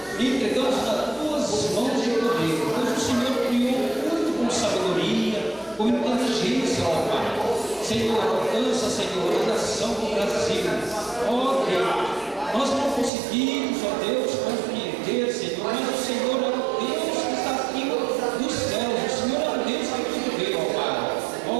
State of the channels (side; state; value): left; drops out; at 13.1 s